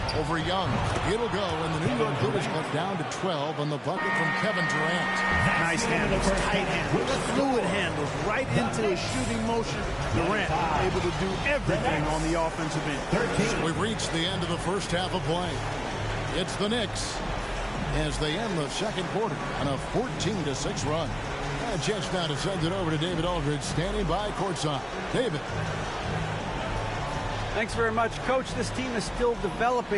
over Young. It'll go, and the New York Clippers cut down to 12 on the bucket from Kevin Durant. Nice handles, tight handles, fluid handles, right into a shooting motion. Durant able to do everything on the offensive end. We've reached the end of the first half of play. It's the Knicks as they end the second quarter on a 14-6 run. A chance now to send it over to David Aldridge, standing by courtside. David. Thanks very much, Coach. This team is still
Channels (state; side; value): identical; both; correlation 1.00